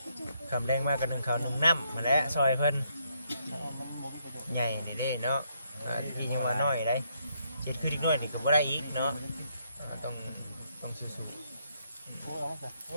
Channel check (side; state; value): both; inverted; correlation -0.74